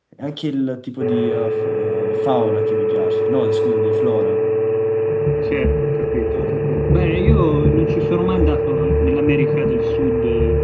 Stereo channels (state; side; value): identical; both; correlation 1.00